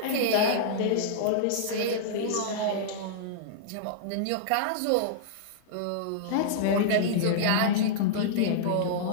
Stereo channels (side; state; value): both; different; correlation -0.02